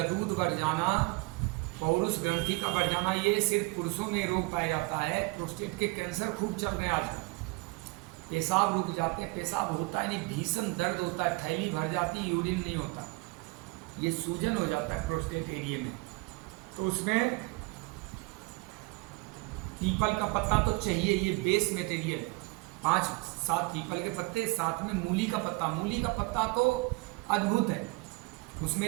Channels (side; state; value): left; quieter; 25.8 dB